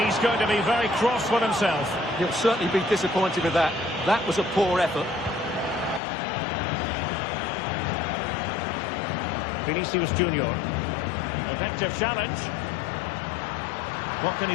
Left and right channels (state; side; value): drops out; right; at 6.0 s